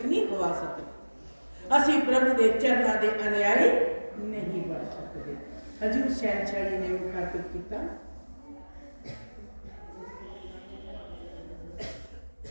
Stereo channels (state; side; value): inverted; both; correlation -1.00